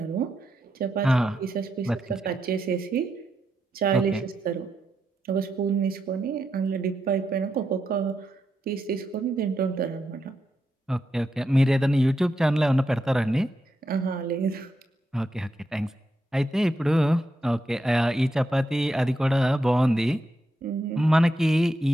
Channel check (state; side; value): normal; both; correlation 0.84